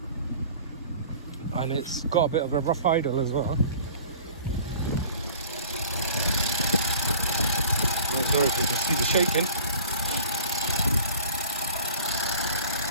and it's got a bit of a rough idle as well. I'm sorry if you can see the shaking.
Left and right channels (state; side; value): inverted; both; correlation -0.45